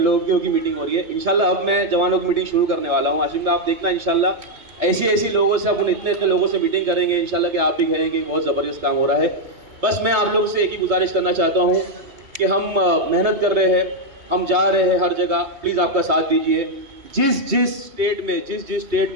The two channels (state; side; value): late; left; 3.1 ms